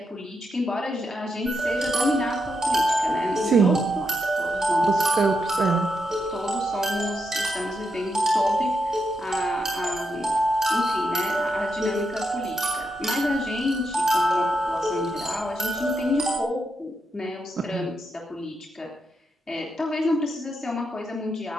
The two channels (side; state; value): both; normal; correlation 0.82